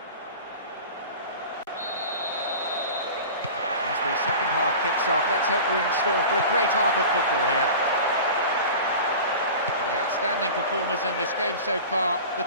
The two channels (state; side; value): inverted; both; correlation -0.36